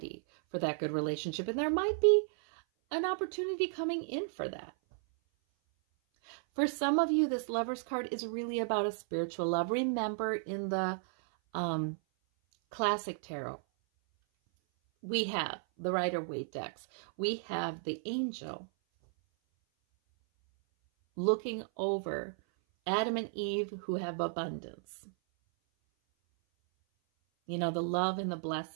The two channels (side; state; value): left; silent; 55 dB below the other